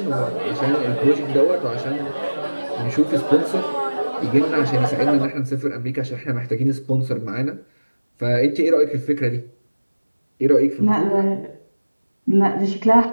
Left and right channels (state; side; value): inverted; both; correlation -1.00